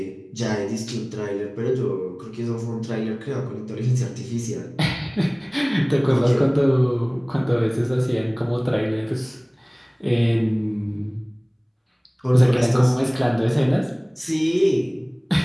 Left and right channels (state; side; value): identical; both; correlation 1.00